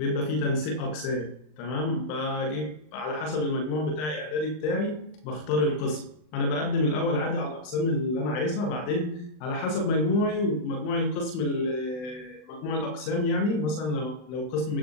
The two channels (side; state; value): right; late; 39 ms